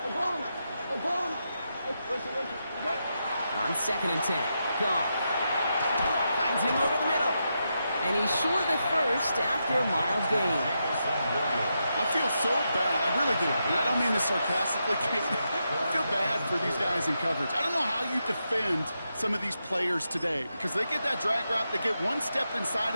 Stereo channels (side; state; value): both; inverted; correlation -0.85